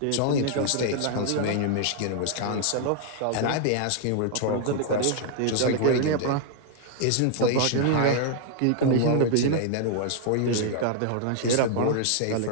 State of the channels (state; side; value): different; both; correlation -0.01